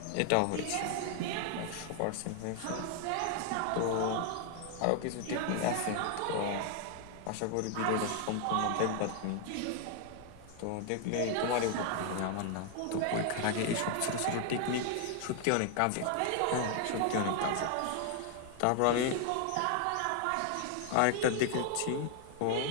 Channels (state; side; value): different; both; correlation 0.00